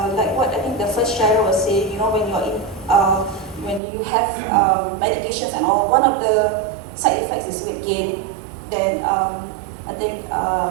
what I think the first sharer was saying, when you're in, when you have medications and all, one of the side effects is weight gain. Then I think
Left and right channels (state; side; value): drops out; left; at 3.8 s